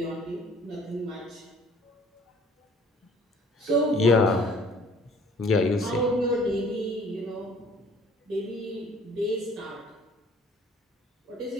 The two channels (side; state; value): both; normal; correlation 0.55